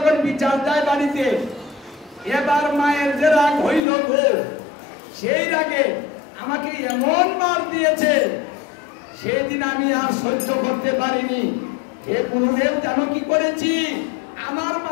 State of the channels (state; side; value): drops out; right; at 3.8 s